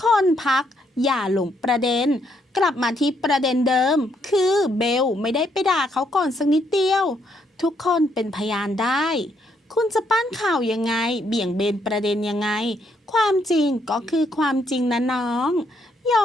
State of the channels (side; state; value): both; normal; correlation 0.73